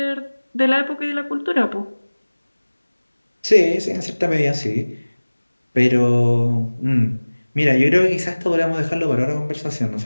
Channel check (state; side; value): inverted; both; correlation -1.00